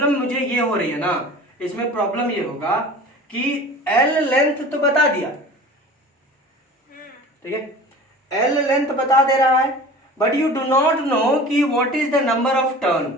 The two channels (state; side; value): normal; both; correlation 0.40